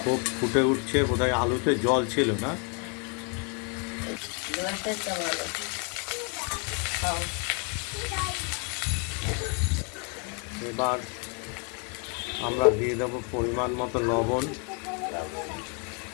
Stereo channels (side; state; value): right; quieter; 37.1 dB